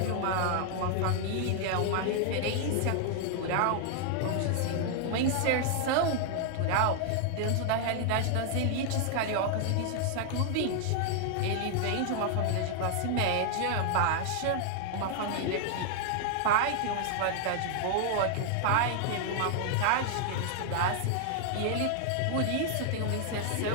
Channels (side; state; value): both; different; correlation 0.00